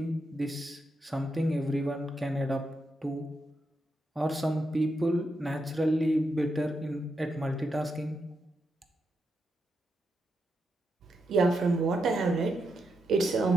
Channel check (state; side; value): normal; both; correlation 0.84